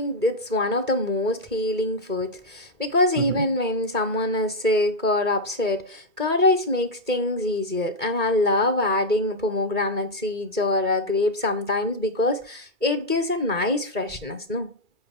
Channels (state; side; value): late; left; 1.8 ms